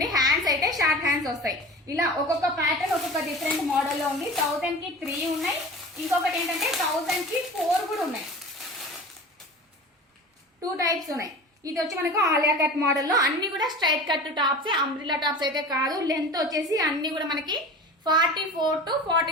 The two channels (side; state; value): both; normal; correlation 0.36